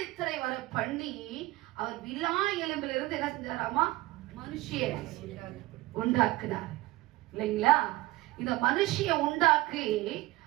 வர பண்ணி அவர் விலா எலும்பிலிருந்து இருந்து என்ன செஞ்சாராமா? மனுஷிய உண்டாக்குனார் இல்லைங்களா? இந்த மனுஷிய உண்டாக்கி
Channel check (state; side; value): quieter; left; 19.2 dB